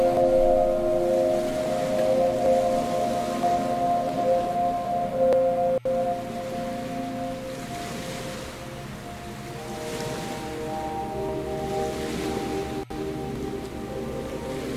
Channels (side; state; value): both; identical; correlation 1.00